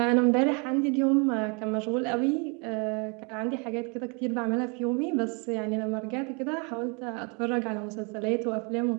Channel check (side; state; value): left; quieter; 34.0 dB